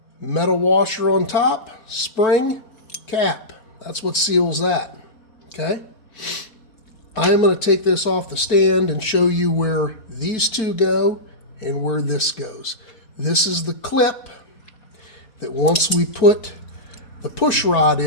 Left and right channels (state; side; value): late; right; 4.5 ms